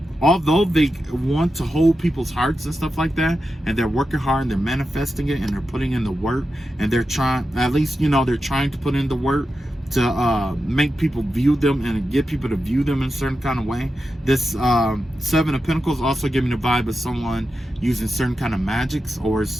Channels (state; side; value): normal; both; correlation 0.90